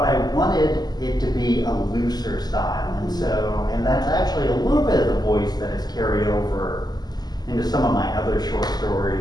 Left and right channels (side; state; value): right; late; 0.20 ms